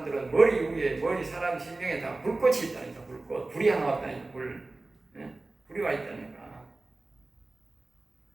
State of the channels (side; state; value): left; quieter; 3.2 dB